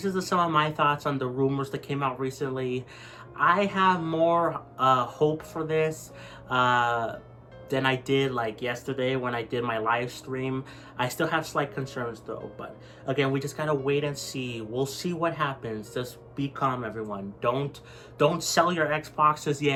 is some of my thoughts on the rumors that came out recently. I have more hope for this than I did like yesterday when I did my live stream. I still have slight concerns though, but again, we just gotta wait and see. We'll see what happens. Just be calm, everyone. Don't sell your Xboxes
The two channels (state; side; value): identical; both; correlation 1.00